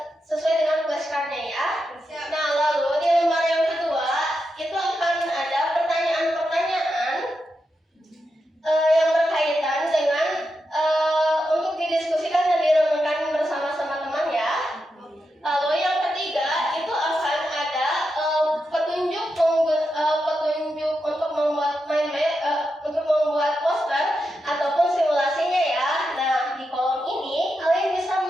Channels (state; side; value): normal; both; correlation 0.87